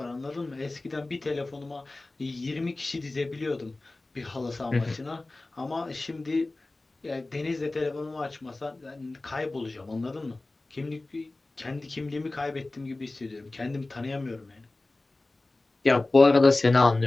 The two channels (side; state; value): right; quieter; 3.0 dB